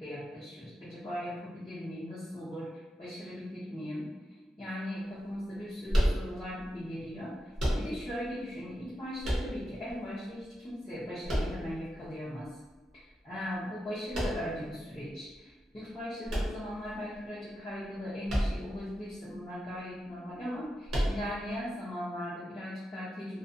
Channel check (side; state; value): both; normal; correlation 0.88